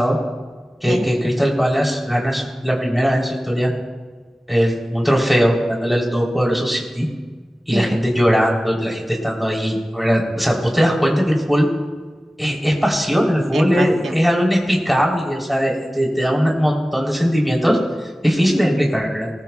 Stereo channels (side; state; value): both; normal; correlation 0.96